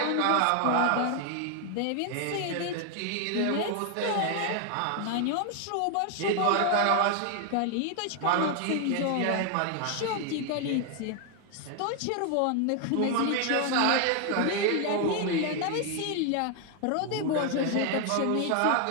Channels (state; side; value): different; both; correlation 0.01